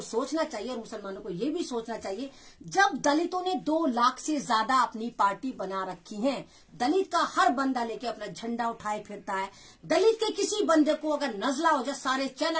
सोचना चाहिए। और मुसलमानों को ये भी सोचना चाहिए, जब दलितों ने 2 लाख से ज्यादा अपनी पार्टी बना रखी है, दलित का हर बंदा लेके अपना झंडा उठाए फिरता है, दलित के किसी बंदे को अगर नजला हो जाए सारे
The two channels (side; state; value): both; identical; correlation 1.00